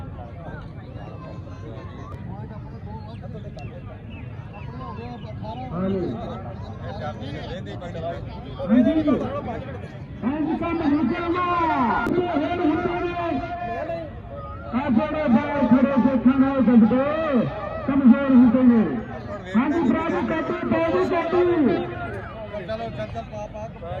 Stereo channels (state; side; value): identical; both; correlation 1.00